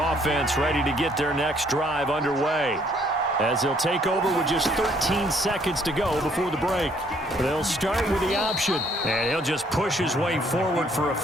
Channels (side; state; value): both; normal; correlation 0.65